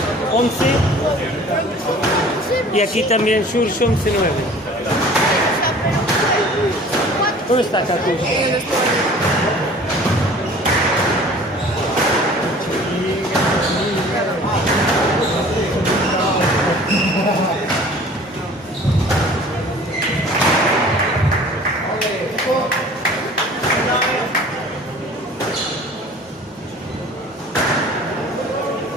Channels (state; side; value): normal; both; correlation 0.47